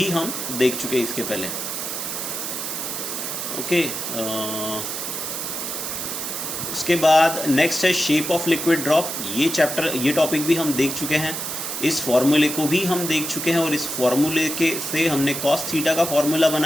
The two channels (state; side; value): noise; right; hiss, 4 dB below the sound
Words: हम देख चुके हैं इसके पहले, ओके। उसके बाद नेक्स्ट है शेप ऑफ लिक्विड ड्रॉप। ये टॉपिक भी हम देख चुके हैं, इस फॉर्मूले को भी हम देख चुके हैं, और इस फॉर्मूले से हमने कॉस थीटा का फॉर्मूला